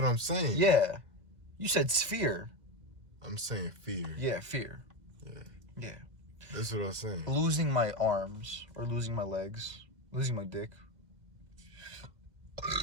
I'm saying. Yeah. You said sphere. I'm saying fear. Yeah, fear. Yeah. Yeah. That's what I'm saying. Losing my arms or losing my legs. Losing my dick.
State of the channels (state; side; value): late; left; 2.0 ms